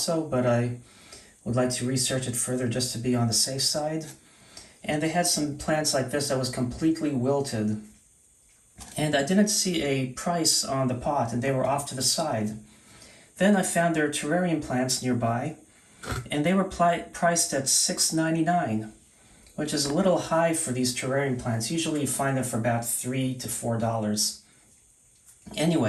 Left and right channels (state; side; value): identical; both; correlation 1.00